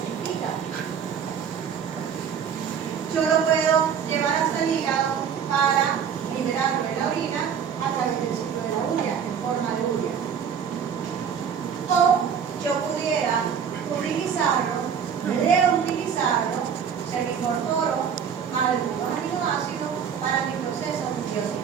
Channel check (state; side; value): quieter; left; 7.5 dB